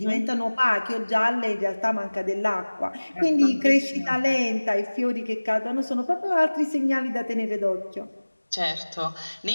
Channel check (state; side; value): inverted; both; correlation -1.00